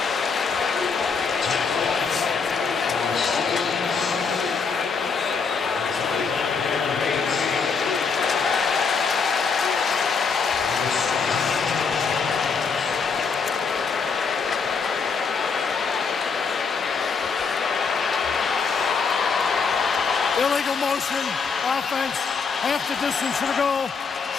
Illegal motion, offense, half the distance to the goal,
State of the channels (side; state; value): right; quieter; 5.3 dB